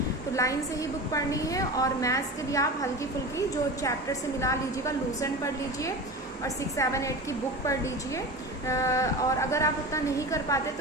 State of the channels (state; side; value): normal; both; correlation 0.30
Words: तो लाइन से ही बुक पढ़नी है। और मैथ्स के लिए आप हल्की फुल्की जो चैप्टर से मिला लीजिएगा, लूसेंट पढ़ लीजिए और 6, 7, 8 की बुक पढ़ लीजिए। और अगर आप उतना नहीं कर पाते